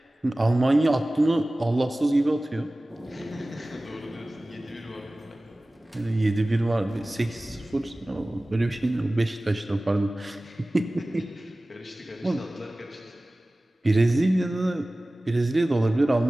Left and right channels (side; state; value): both; normal; correlation 0.97